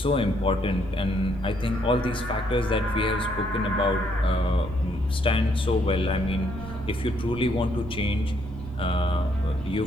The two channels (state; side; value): normal; both; correlation 0.71